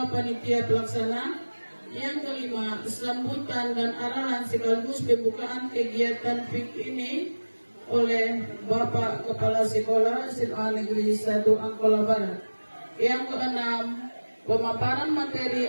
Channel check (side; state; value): both; inverted; correlation -1.00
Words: Panitia Pelaksana. Yang kelima, sambutan dan arahan sekaligus pembukaan kegiatan PIK ini oleh Bapak Kepala Sekolah SMA Negeri 1 Angkola Barat. Yang keenam, pemaparan